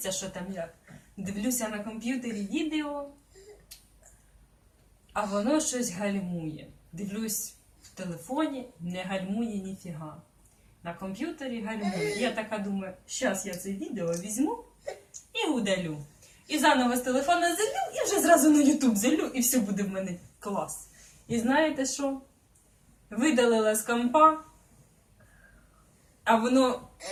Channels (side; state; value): both; identical; correlation 1.00